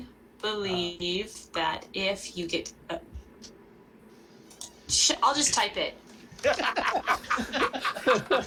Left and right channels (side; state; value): both; identical; correlation 1.00